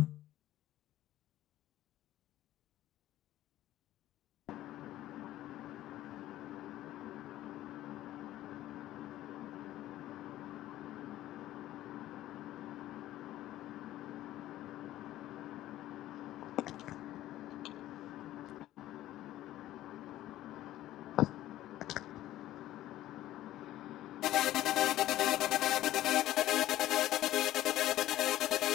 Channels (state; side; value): quieter; right; 14.3 dB